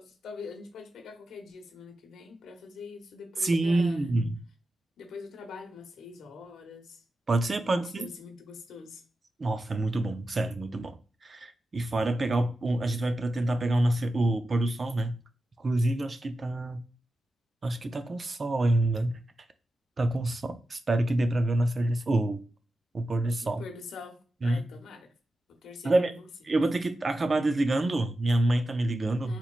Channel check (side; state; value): both; normal; correlation 0.92